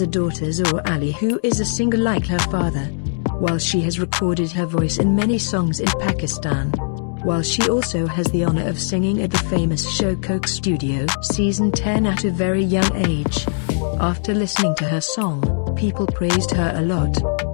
a daughter Zoe Ali, who is a singer like her father. While she has recorded her voice in many songs in Pakistan. While she also has the honor of singing at the famous show Coke Studio Season 10 at a very young age. After listening to her song, people praised her a lot.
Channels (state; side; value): silent; right; digital silence